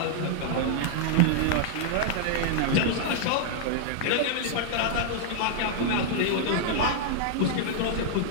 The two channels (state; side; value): different; both; correlation -0.01